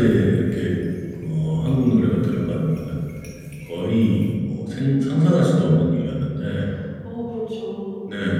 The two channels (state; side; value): identical; both; correlation 1.00